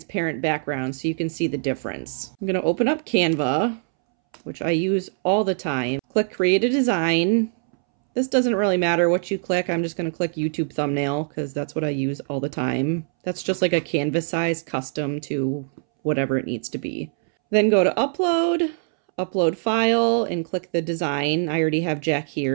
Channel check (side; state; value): left; silent; 63 dB below the other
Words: background so you can see the difference. I'm going to open up Canva, which I use all the time. Click create a design. This doesn't really matter what you click. I'm just going to click YouTube thumbnail because that's what I use all the time. That's just like a canvas size custom to whatever it needs to be. Then go to upload, upload file, and click the design. I already have Jack